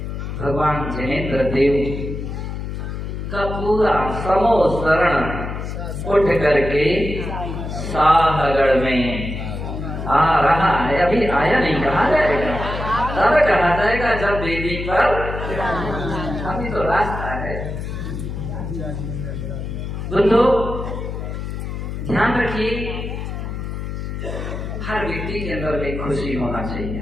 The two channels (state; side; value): noise; left; hum, 5 dB below the sound